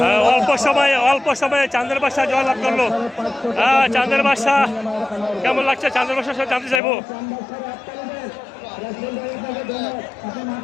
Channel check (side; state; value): right; drops out; at 6.8 s